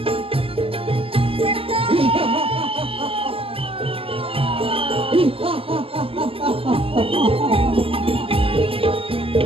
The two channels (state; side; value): late; left; 0.26 ms